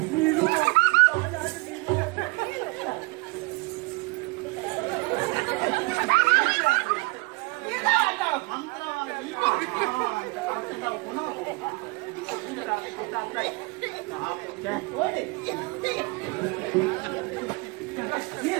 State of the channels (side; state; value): left; quieter; 26.7 dB